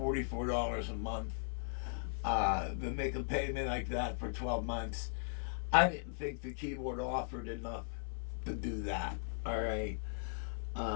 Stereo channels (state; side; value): silent; right; 52 dB below the other